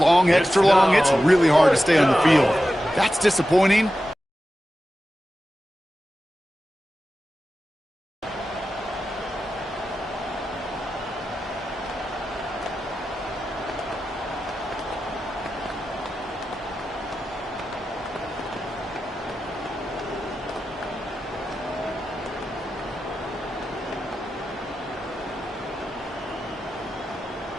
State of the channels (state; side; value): normal; both; correlation 0.92